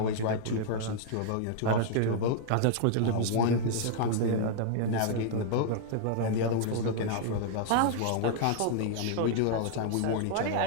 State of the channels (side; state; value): both; different; correlation -0.01